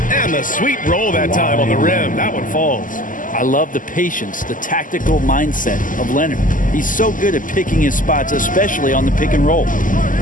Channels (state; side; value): late; right; 0.38 ms